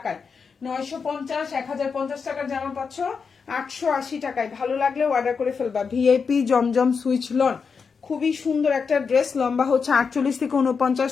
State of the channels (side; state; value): right; quieter; 5.6 dB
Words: 950, 1050 টাকার জামা পাচ্ছ 880 টাকায়। ভালো লাগলে অর্ডার করে ফেলবা। ভিআইপি জমজম সুইচ লন, খুবই সুন্দর একটা ড্রেস, লম্বা হচ্ছে 48 থেকে 49,